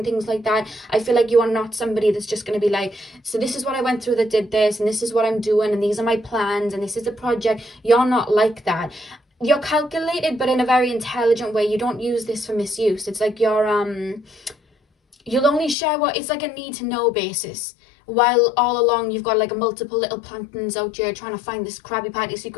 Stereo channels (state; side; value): drops out; right; at 15.8 s